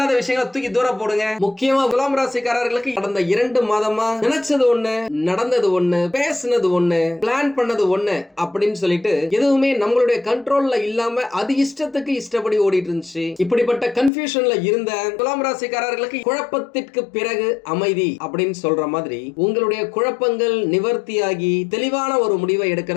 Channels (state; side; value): drops out; right; at 14.1 s